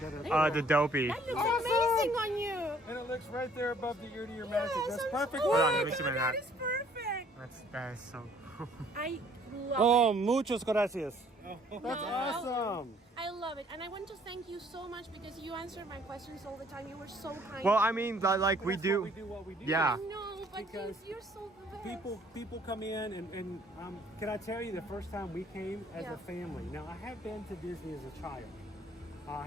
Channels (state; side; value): normal; both; correlation 0.60